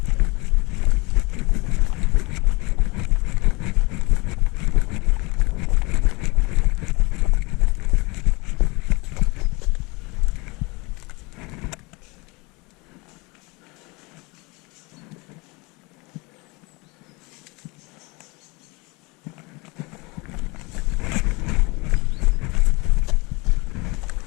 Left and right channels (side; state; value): right; quieter; 26.2 dB